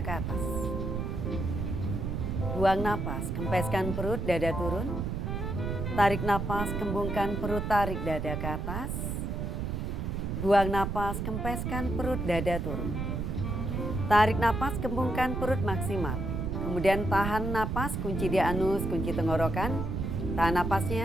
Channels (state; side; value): noise; right; rumble, 2 dB below the sound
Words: atas. Buang napas, kempeskan perut, dada turun. Tarik napas, kembungkan perut, tarik dada ke atas. Buang napas, kempeskan perut, dada turun. Tarik napas, kembungkan perut maksimal. Kemudian tahan napas, kunci di anus, kunci tenggorokan. Tahan